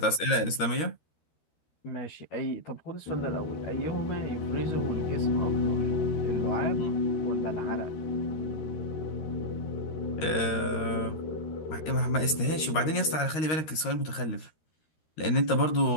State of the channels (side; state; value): right; late; 13 ms